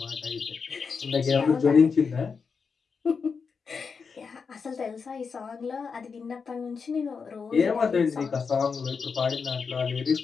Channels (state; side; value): quieter; right; 5.5 dB